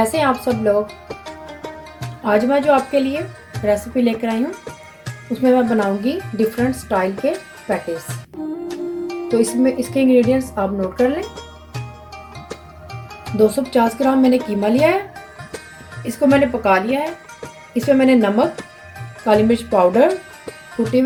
हैं आप सब लोग। आज मैं जो आपके लिए रेसिपी लेकर आई हूँ उसमें मैं बनाऊंगी डिफरेंट स्टाइल के पैटीज। तो इसमें इसके इंग्रेडिएंट्स आप नोट कर लें। 250 ग्राम मैंने कीमा लिया है, इसको मैंने पका लिया है। इसमें मैंने नमक, काली मिर्च पाउडर, कुटी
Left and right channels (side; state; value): both; identical; correlation 1.00